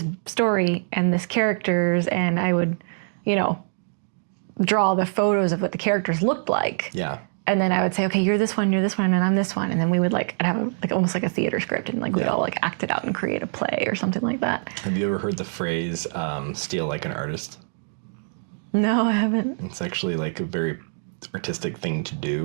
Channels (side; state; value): left; silent; digital silence